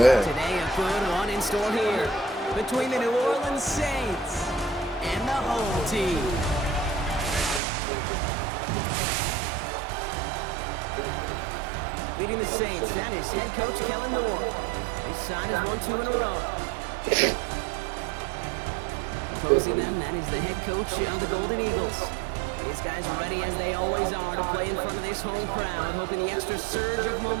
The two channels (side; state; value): left; drops out; at 7.6 s